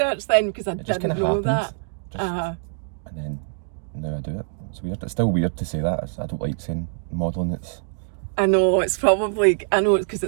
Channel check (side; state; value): left; silent; digital silence